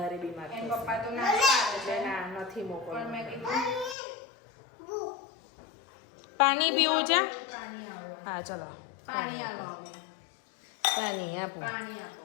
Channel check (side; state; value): right; drops out; at 4.0 s